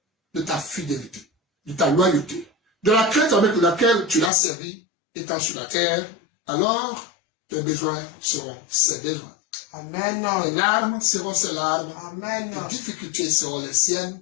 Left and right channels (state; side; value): drops out; right; at 4.3 s